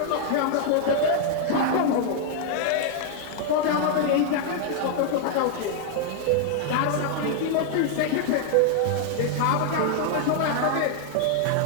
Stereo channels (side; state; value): both; different; correlation 0.00